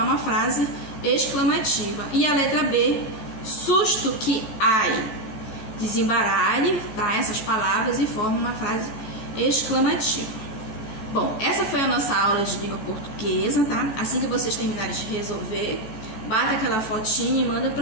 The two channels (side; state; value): right; late; 14 ms